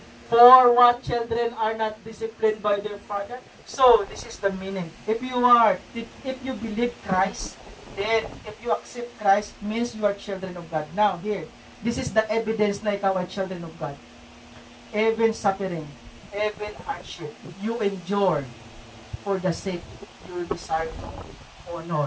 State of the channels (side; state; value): both; identical; correlation 1.00